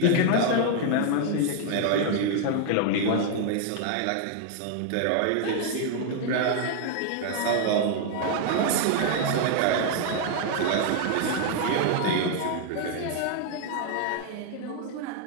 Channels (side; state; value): both; different; correlation 0.00